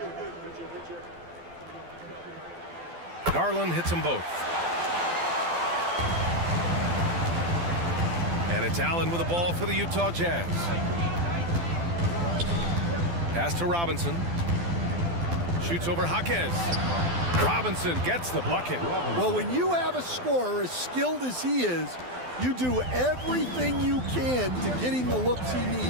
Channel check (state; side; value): late; left; 12 ms